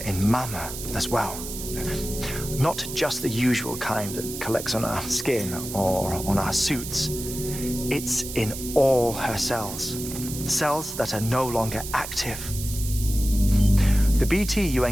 in Mama as well. Not just the usual kind that collects on our skin or on our suits. It's in all her cells. Cells that are no longer active. The BT you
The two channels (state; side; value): noise; right; hiss, 9 dB below the sound